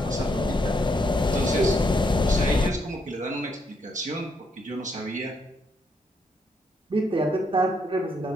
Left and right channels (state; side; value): normal; both; correlation 0.75